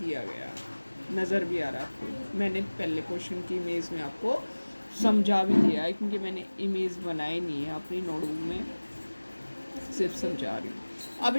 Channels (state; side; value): inverted; both; correlation -1.00